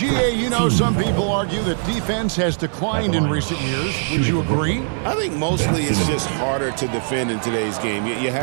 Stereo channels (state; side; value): silent; left; digital silence